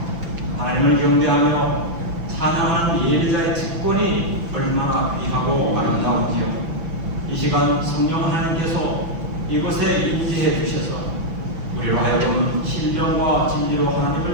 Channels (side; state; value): left; late; 6.0 ms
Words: 하나님을 경배하며 찬양하는 예배자의 직권이 얼마나 귀하고 아름다운지요. 이 시간 성령 하나님께서 이곳에 임재해 주셔서 우리로 하여금 신령과 진리로